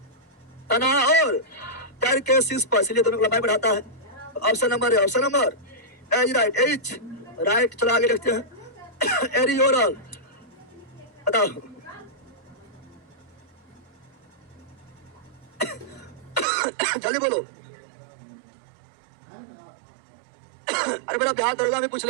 तना और पैर के शीर्ष पर, इसलिए दोनों को लंबाई बढ़ाता है। ऑप्शन नंबर है option number H right, H right. चलो आगे देखते हैं एरियोरल। बताओ जल्दी बोलो। अरे बेटा बिहार दरोगा में पूछ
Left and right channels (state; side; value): drops out; left; at 16.4 s